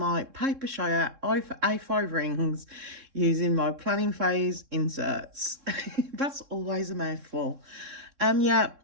Papershire A5 Rings using my planning phase inserts. That's always a mouthful. Yeah,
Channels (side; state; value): left; late; 3.7 ms